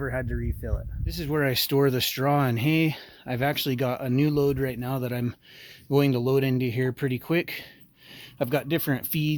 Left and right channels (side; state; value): both; identical; correlation 1.00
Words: had to refill it. This is where I store the straw and hay. I've actually got a new load right now that I'm going to load into here pretty quick. I've got different